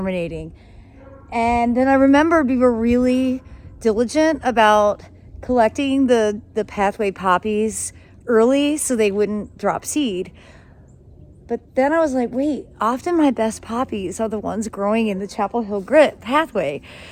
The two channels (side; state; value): both; identical; correlation 1.00